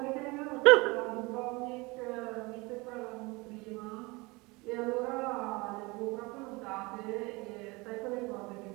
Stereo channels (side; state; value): left; quieter; 24.8 dB